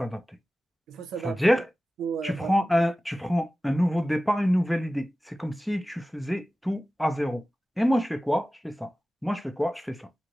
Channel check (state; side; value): normal; both; correlation 0.96